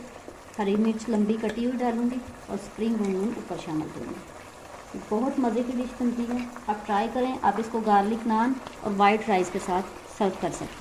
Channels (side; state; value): both; identical; correlation 1.00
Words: हरी मिर्च लंबी कटी हुई डालूँगी और स्प्रिंग अनियन ऊपर शामिल करूँगी। बहुत मज़े की डिश बनती है, आप ट्राई करें। आप इसको गार्लिक नान और वाइट राइस के साथ सर्व कर